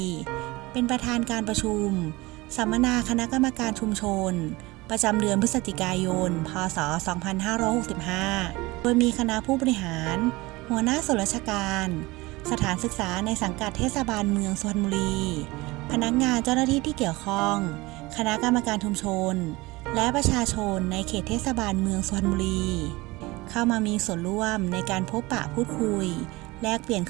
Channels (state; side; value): quieter; left; 21.8 dB